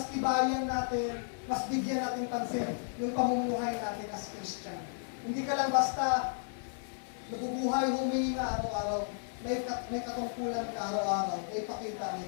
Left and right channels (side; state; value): right; silent; 55 dB below the other